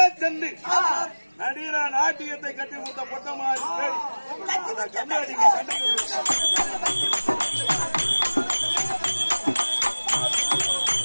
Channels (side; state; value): both; inverted; correlation -1.00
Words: சென்று நடிகர நாட்டியத்தை கட்டி கொடுத்த பொட்டமாரி பேடி கம்மியாட்டிக்கு